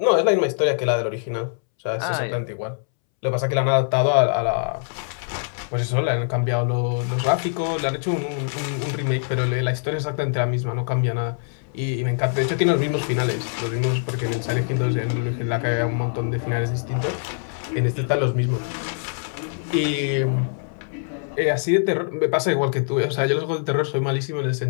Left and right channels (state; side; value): silent; right; 63 dB below the other